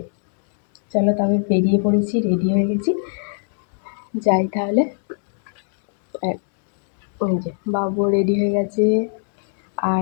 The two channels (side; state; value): right; silent; 59 dB below the other